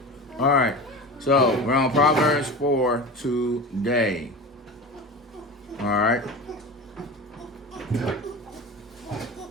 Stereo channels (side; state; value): both; normal; correlation 0.31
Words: All right, so we're on Proverbs 4 today. All right. All